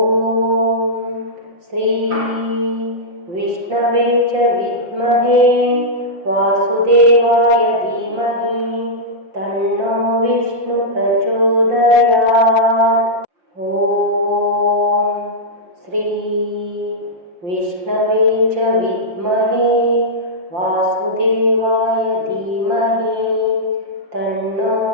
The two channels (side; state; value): left; late; 5.7 ms